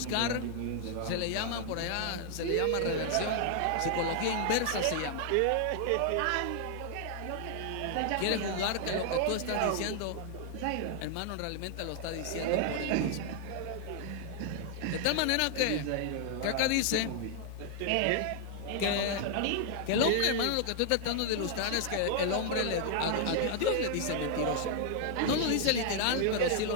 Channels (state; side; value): different; both; correlation 0.00